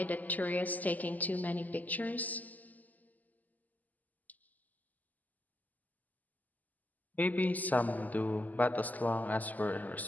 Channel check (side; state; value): right; late; 0.081 ms